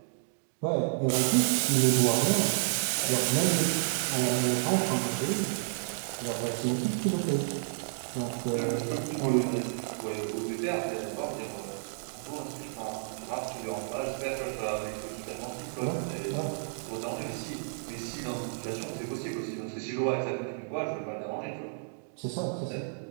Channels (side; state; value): left; silent; digital silence